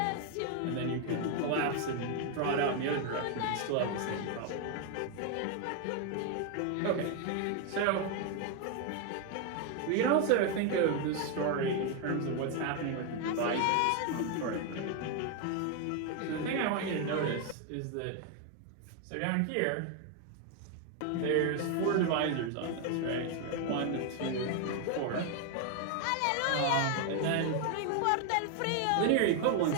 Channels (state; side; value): different; both; correlation 0.01